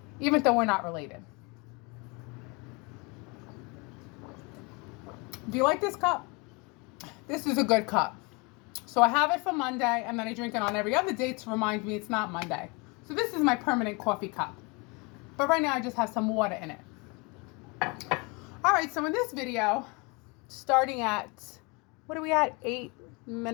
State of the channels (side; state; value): right; quieter; 28.4 dB